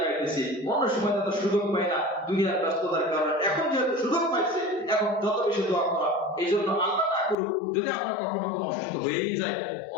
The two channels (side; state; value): right; drops out; at 7.4 s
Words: অন্য সময় তো সুযোগ পাই না দুনিয়ার ব্যস্ততার কারণে, এখন যেহেতু সুযোগ পাইছে এখন যত বেশি দোয়া করা। এই জন্য আল্লাহ না করুক যদি আমরা কখনো কোনো অসুস্থ হয়েই যায়,